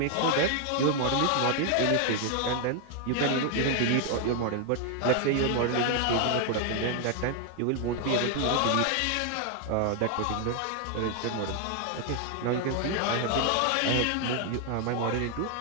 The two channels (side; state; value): both; different; correlation 0.01